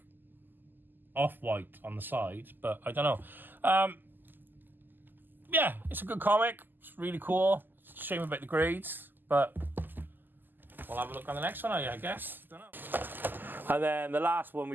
off-white on the sides, but I don't know. Yeah, it's a good comic. It's really cool. It's a shame about the grades, but we'll have a look on the next one, I guess. Don't know. And then the last one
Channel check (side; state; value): left; late; 0.090 ms